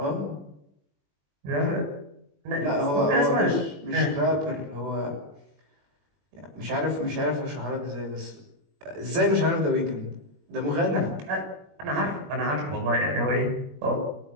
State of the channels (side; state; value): left; late; 21 ms